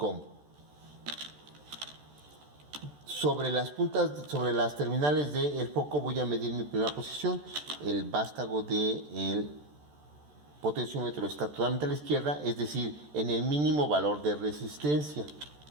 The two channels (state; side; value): late; left; 14 ms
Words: Sobre las terminales del foco voy a medir mi primera posición. El vástago del potenciómetro está totalmente a la izquierda, es decir, en el mínimo valor de resistencia.